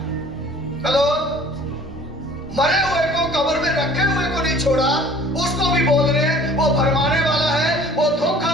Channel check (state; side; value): normal; both; correlation 0.50